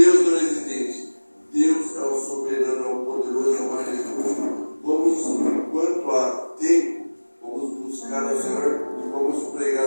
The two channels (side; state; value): both; inverted; correlation -1.00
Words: não é exigente. Deus é o soberano, é o poderoso, é o majestoso. Vamos, enquanto há tempo, vamos buscar ao Senhor e vamos pregar